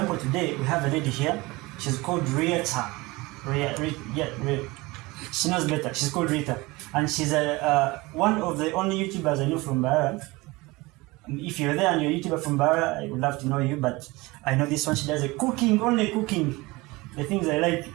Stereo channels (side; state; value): left; quieter; 22.4 dB